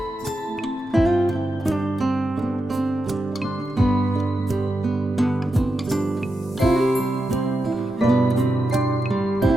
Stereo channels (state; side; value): normal; both; correlation 0.88